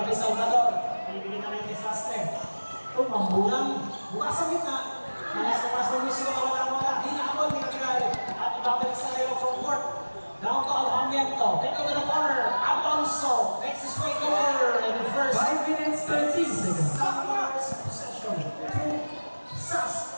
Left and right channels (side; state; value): both; inverted; correlation -1.00